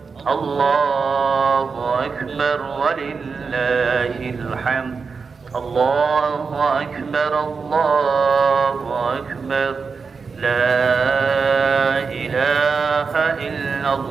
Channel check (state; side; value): quieter; left; 5.1 dB